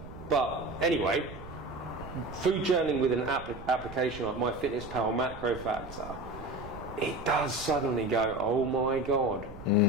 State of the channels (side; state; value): right; noise; rumble, 15 dB below the sound